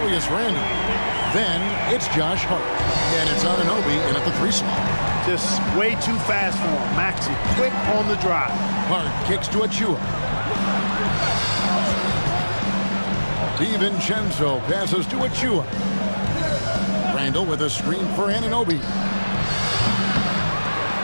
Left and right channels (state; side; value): inverted; both; correlation -1.00